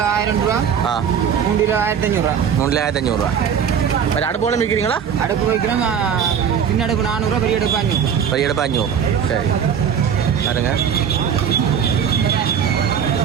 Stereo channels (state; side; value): quieter; left; 7.8 dB